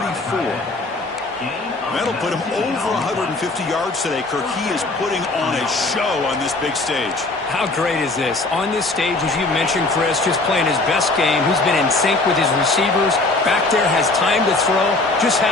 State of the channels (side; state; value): right; quieter; 3.2 dB